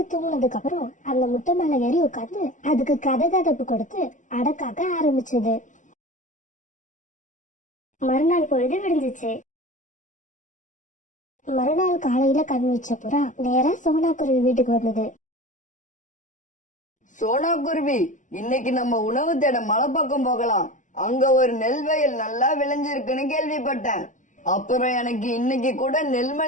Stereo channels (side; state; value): right; late; 0.37 ms